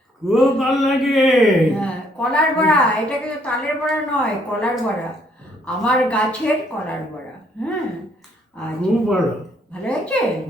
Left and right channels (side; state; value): both; normal; correlation 0.67